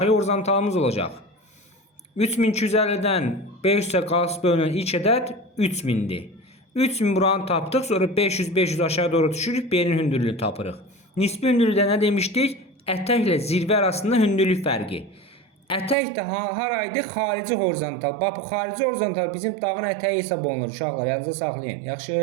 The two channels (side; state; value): left; drops out; at 16.0 s